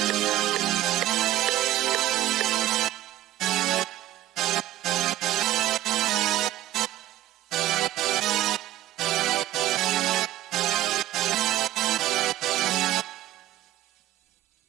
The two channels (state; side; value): quieter; left; 14.3 dB